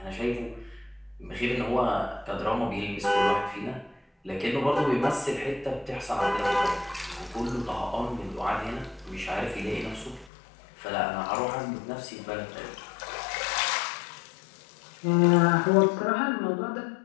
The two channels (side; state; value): right; drops out; at 10.3 s